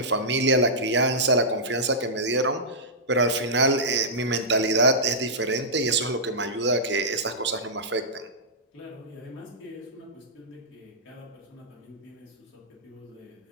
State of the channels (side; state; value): both; normal; correlation -0.14